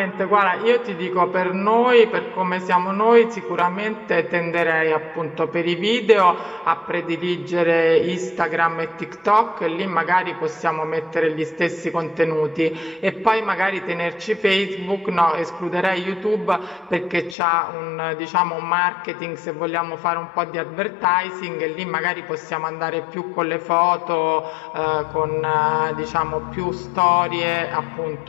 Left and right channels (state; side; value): drops out; right; at 17.4 s